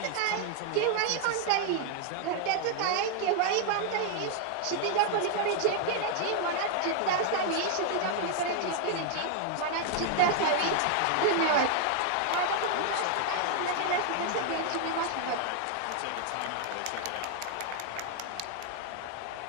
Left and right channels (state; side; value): different; both; correlation 0.00